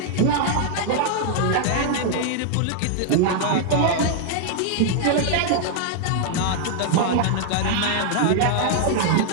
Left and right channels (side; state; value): both; different; correlation -0.01